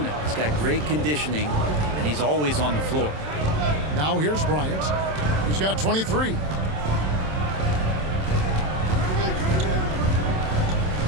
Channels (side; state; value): left; late; 27 ms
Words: He's got great conditioning, and he's always on the floor. Now here's Bryant. He's got 23.